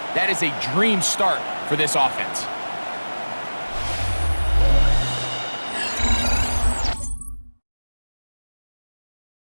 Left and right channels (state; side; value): inverted; both; correlation -1.00